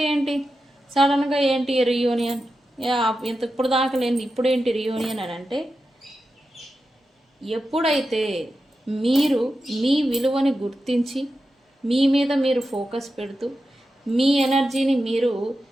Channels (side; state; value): both; normal; correlation 0.90